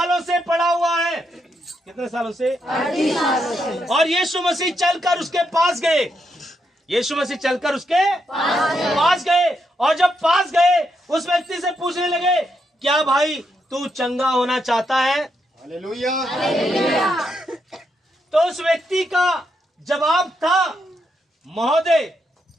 से पड़ा हुआ है। कितने सालों से? 38 सालों से। और यीशु मसीह चलकर उसके पास गए, यीशु मसीह चलकर उसके पास गए, और जब पास गए उस व्यक्ति से पूछने लगे, क्या भाई तू चंगा होना चाहता है? हालेलुया। तो उस व्यक्ति का जवाब था, महोदय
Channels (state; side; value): normal; both; correlation 0.80